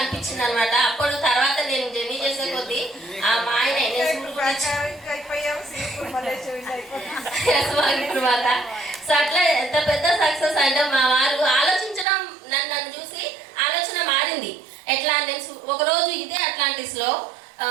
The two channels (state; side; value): drops out; left; at 12.1 s